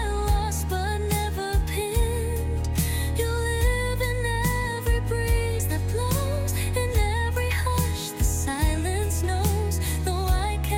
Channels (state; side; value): identical; both; correlation 1.00